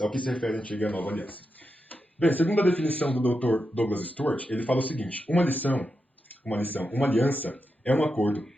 ao que se refere a antiga e a nova aliança. Bem, segundo a definição do Dr. Douglas Stewart, ele fala o seguinte: uma aliança é um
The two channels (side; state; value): both; normal; correlation 0.87